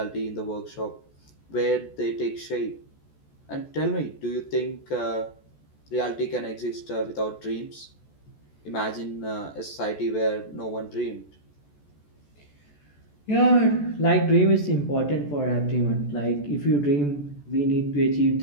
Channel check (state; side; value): late; right; 14 ms